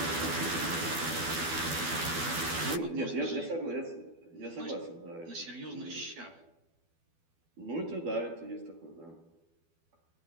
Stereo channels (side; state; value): left; late; 12 ms